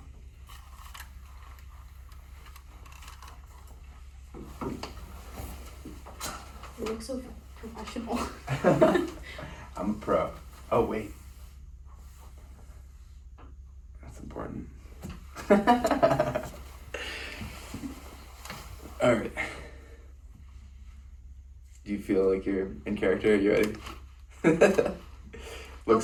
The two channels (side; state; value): both; identical; correlation 1.00